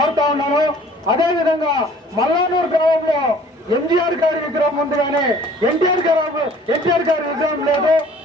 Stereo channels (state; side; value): normal; both; correlation 0.53